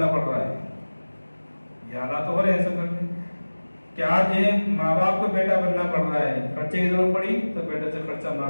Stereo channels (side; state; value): both; inverted; correlation -1.00